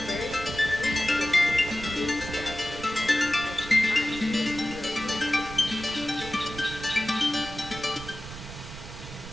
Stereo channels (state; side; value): noise; right; rumble, 13 dB below the sound